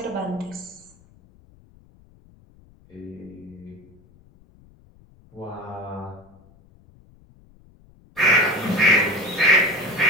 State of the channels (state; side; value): noise; left; rumble, 28 dB below the sound